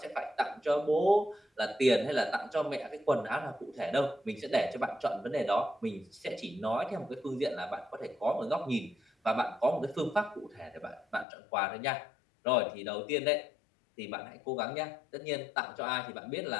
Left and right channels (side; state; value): right; drops out; at 11.2 s